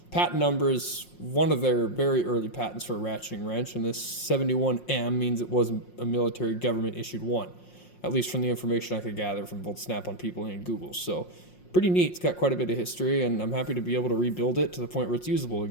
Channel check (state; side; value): late; right; 5.6 ms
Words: Patent number is one of their very early patents for a ratcheting wrench, and this 71M means it was a military government issued one, at least from the information I could gather from both Snap-on People and Google. So pretty neat. It's got quite a bit of history, and I'm happy to be able to rebuild it to the point where it's usable